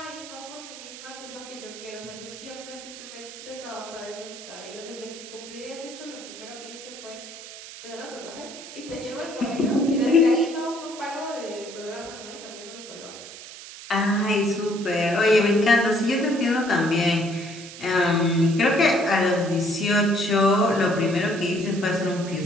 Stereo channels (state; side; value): noise; right; hiss, 14 dB below the sound